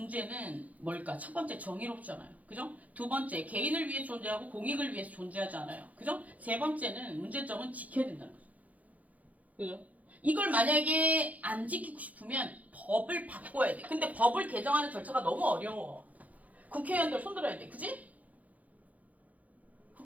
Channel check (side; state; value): left; late; 0.074 ms